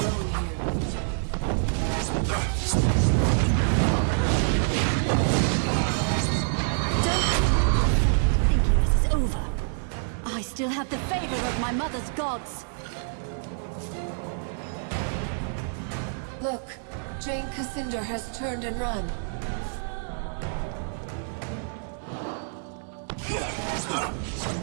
Thinking this is over. I still have the favor of my mother's gods. Look, Jane Cascinder has turned and run.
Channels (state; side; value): silent; left; digital silence